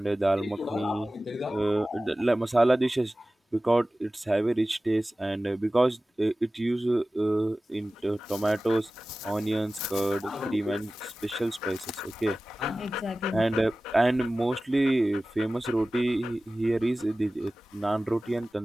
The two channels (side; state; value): both; normal; correlation 0.96